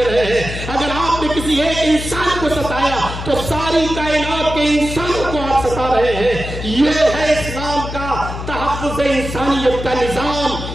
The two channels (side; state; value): left; noise; hum, 7 dB below the sound